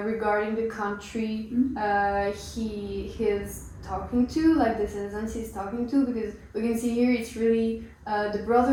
regarding the country he is talking to, like the citizens he's talking to, because we can see here it's really the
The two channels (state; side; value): identical; both; correlation 1.00